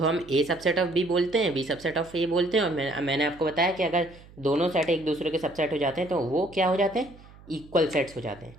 हम ए सबसेट ऑफ बी बोलते हैं, बी सबसेट ऑफ ए बोलते हैं। और मैंने आपको बताया कि अगर दोनों सेट एक दूसरे के सबसेट हो जाते हैं तो वो क्या हो जाते हैं? इक्वल सेट्स हो जाते हैं।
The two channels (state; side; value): noise; right; hum, 22 dB below the sound